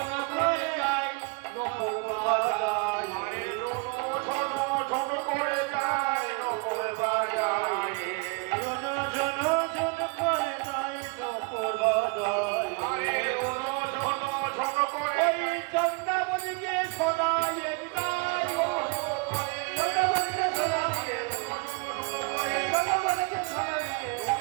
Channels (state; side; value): quieter; left; 31.3 dB